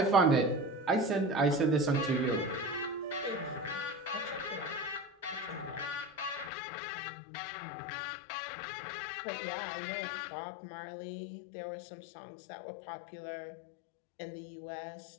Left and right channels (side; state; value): right; drops out; at 6.5 s